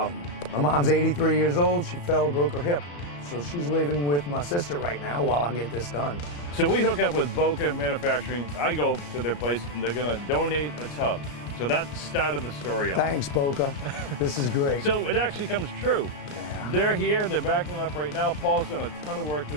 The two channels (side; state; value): right; late; 35 ms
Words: My mom's 83 years old. She fell, broke her hip. So she's living with my sister right now while I get this done. So we hook up with Boca Manufacturing. I go to their place and they're gonna donate a tub. So that's the start of the story. Thanks, Boca. This is great. So it actually comes true. They're here, they're backing up right now. Paul's done a ton of work to